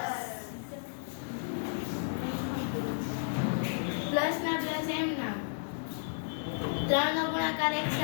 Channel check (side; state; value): right; silent; digital silence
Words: પ્લસ ના પ્લસ એમ ના. 3 નો ગુણાકાર 1